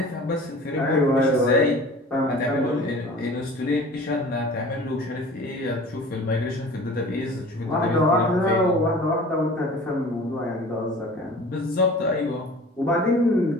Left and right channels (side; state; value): both; normal; correlation 0.43